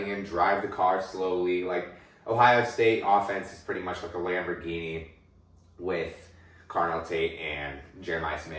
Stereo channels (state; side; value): identical; both; correlation 1.00